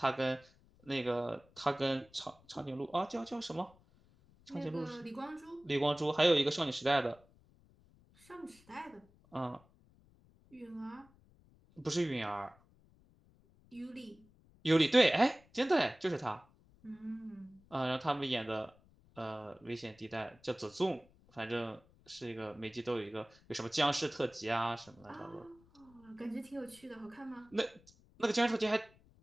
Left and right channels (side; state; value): left; noise; rumble, 28 dB below the sound